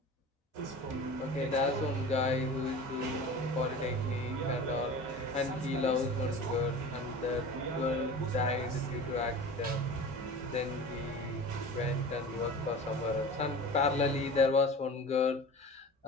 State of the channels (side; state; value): both; normal; correlation 0.36